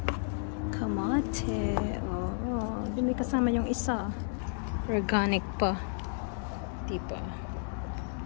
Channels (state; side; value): silent; right; digital silence